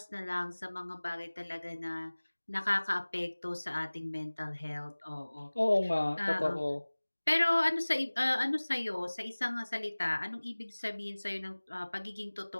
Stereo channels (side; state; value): both; inverted; correlation -1.00